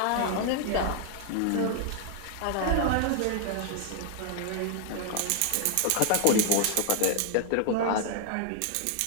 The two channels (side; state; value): both; different; correlation -0.01